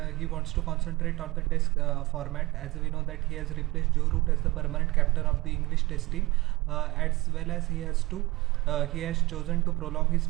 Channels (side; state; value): left; quieter; 20.9 dB